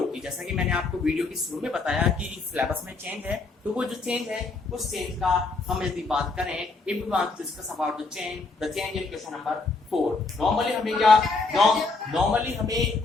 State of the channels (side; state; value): right; quieter; 3.8 dB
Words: की। जैसा कि मैंने आपको वीडियो की शुरू में बताया कि सिलेबस में चेंज है, तो वो जो चेंज है उस चेंज का हम यदि बात करें, if we want to discuss about the change in question number 4, normally हमें